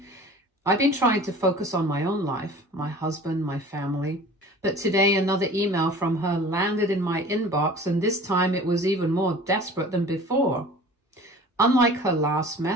I've been trying to focus on my own life, my husband, my family. But today another email from her landed in my inbox, and this time it was even more desperate than before. Unlike her last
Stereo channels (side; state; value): both; normal; correlation 0.43